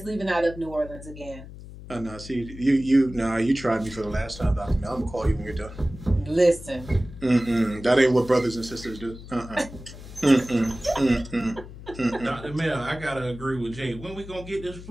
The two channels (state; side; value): noise; left; hum, 15 dB below the sound